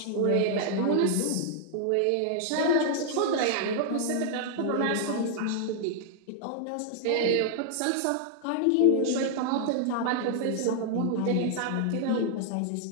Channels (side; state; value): both; different; correlation 0.00